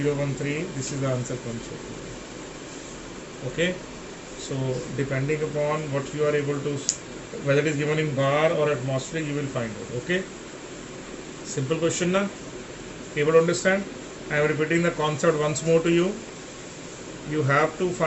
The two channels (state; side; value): identical; both; correlation 1.00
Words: this is the answer comes out. Okay. So depending upon what you are able to, whether it is given in bar or atmospheric, you will find out. Okay. Simple question na? Able to understand? I am repeating the concept once more to you. You have to